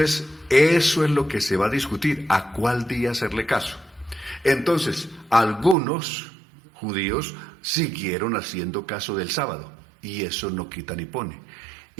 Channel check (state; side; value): drops out; left; at 5.8 s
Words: eso es lo que se va a discutir, a cuál día hacerle caso. Entonces, algunos judíos siguieron haciendo caso del sábado, y eso no quita ni pone.